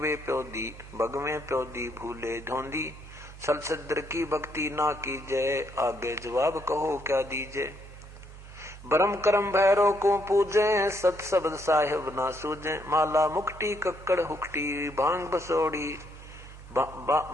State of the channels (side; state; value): both; normal; correlation 0.73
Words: प्योदी भगवे प्योदी, भूले ढोंदी, सलसद्र की भक्ति ना कीजय, आगे जवाब कहो क्या दीजे। ब्रह्म कर्म भैरव को पूजे, सत शब्द साहिब ना सूझे, माला मुक्ति कक्कड़ हुक्टी, भांग बसोड़ी